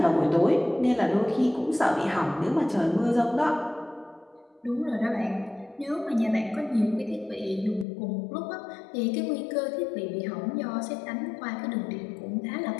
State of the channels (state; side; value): drops out; right; at 7.9 s